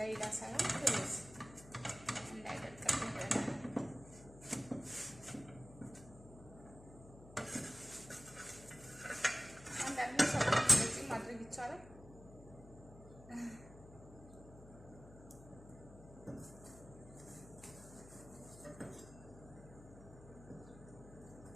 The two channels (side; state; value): left; noise; hum, 17 dB below the sound